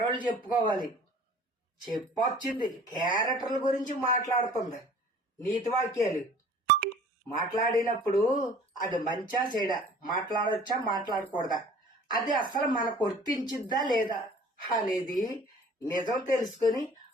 చెప్పుకోవాలి. చెప్పొచ్చింది క్యారెక్టర్ల గురించి మాట్లాడుతుంది. నీతి వాక్యాలు మాట్లాడినప్పుడు అది మంచా చెడా, మాట్లాడొచ్చా మాట్లాడకూడదా, అది అసలు మనకు వర్తించిద్దా లేదా అనేది నిజం తెలుసుకొని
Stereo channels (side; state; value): both; normal; correlation 0.49